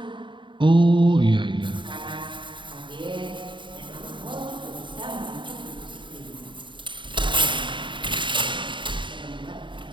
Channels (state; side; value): late; left; 0.23 ms